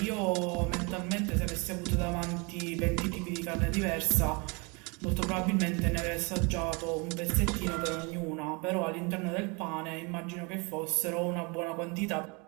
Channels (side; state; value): left; quieter; 29.9 dB